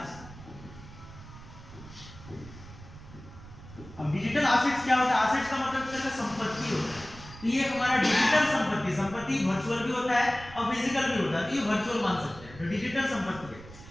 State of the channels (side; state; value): right; noise; rumble, 17 dB below the sound